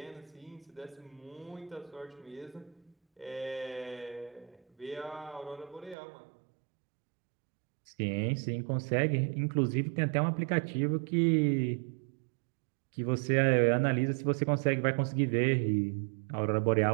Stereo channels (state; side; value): drops out; left; at 6.0 s